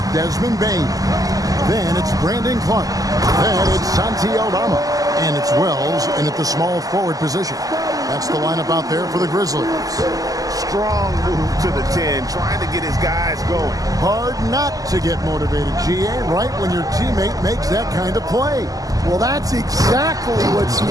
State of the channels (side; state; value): left; late; 0.17 ms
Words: Desmond Bain. Then it's Brandon Clark. Then it's Santi Aldama. And it's Wells in at the small forward position. That's the lineup out there for the Grizzlies. Strong move to the 10, trying to get his guys going. Hard not to get motivated, GA, right when your teammate makes that kind of play. Well, that's exactly what's